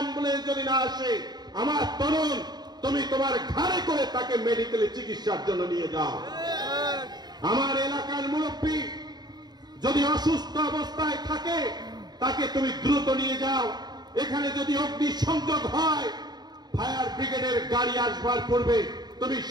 যদি না আসে, আমার তরুণ তুমি তোমার ঘাড়ে করে তাকে মেডিকেলে চিকিৎসার জন্য নিয়ে যাও। আমার এলাকার মুরব্বী যদি অসুস্থ অবস্থায় থাকে, তাকে তুমি দ্রুত নিয়ে যাও। এখানে যদি অগ্নিসংযোগ হয়, ফায়ার ব্রিগেডের গাড়ি আসবার পূর্বে তুমি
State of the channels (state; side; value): late; left; 0.20 ms